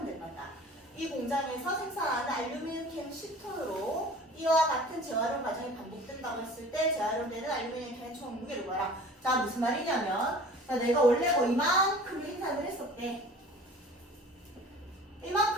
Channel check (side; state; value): both; normal; correlation 0.44